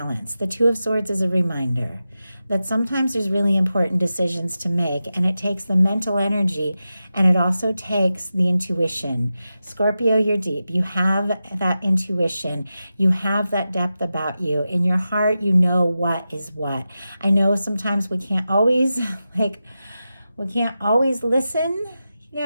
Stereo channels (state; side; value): inverted; both; correlation -0.92